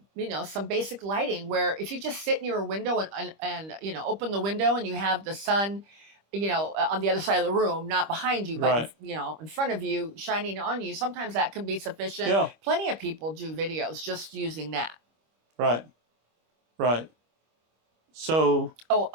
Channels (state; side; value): late; left; 25 ms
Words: some basic lighting where if you just sit near a window and open the window and you have the sun, on the other side of the room, not behind you, but, Right. in front of you, shining on you, sometimes that can be sufficient. Yeah. Plenty of people do videos just using that. Right. Right. So.